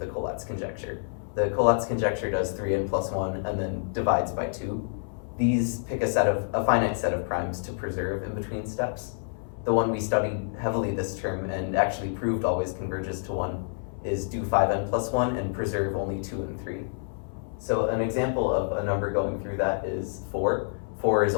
Collatz conjecture. The Collatz conjecture does 3n plus 1 and then divides by 2. These pick a finite set of primes to preserve in between steps. The one we studied heavily this term and actually proved always converges to 1 is do 5n plus 1 and preserve only 2 and 3. So an example of a number going through that is 4. 4 is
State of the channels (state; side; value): silent; right; 59 dB below the other